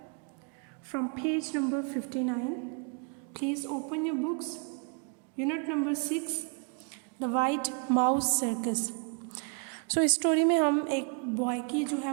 from page number 59. Please open your books. Unit number 6, The White Mouse Circus. इस story में हम एक boy की जो है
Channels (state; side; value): quieter; left; 37.2 dB